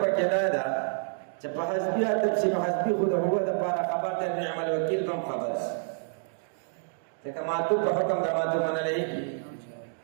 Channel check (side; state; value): left; silent; digital silence